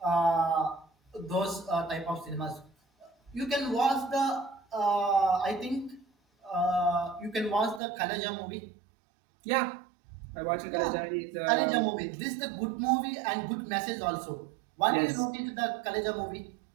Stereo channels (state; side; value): drops out; left; at 7.8 s